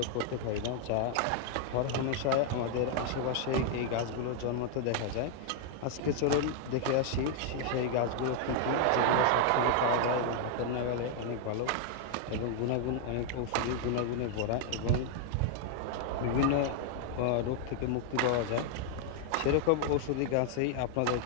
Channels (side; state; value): both; different; correlation 0.00